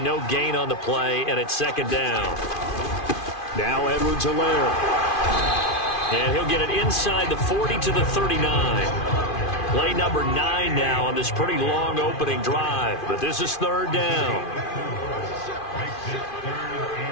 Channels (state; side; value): late; right; 2.5 ms